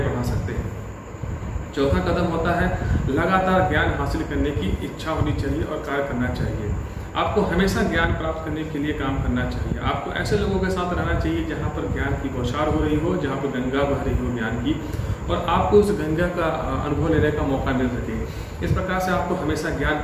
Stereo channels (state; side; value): identical; both; correlation 1.00